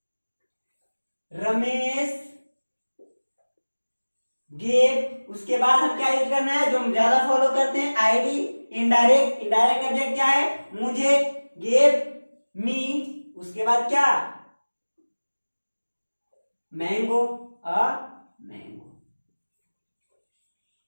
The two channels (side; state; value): both; inverted; correlation -1.00